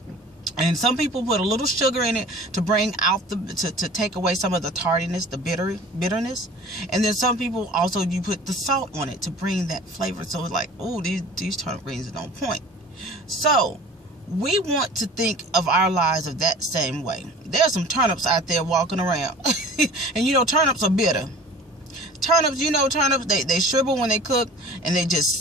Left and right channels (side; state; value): both; normal; correlation 0.44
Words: And some people put a little sugar in it to bring out to take away some of the tardiness, the bitterness. And then some people also, you put the salt on it to bring that flavor. So it's like, oh, these turnip greens are on point. So we want to think of our lives of that same way. There's some turnips out there walking around. And you know, turnips are bitter. Turnips, they shrivel when they cook, and